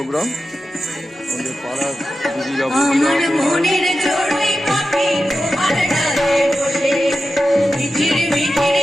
আমাদের পাড়ার দিদিরা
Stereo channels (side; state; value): both; normal; correlation 0.92